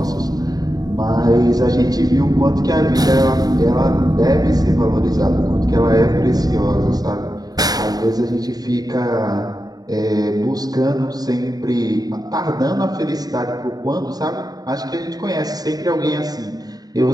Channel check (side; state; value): left; late; 0.18 ms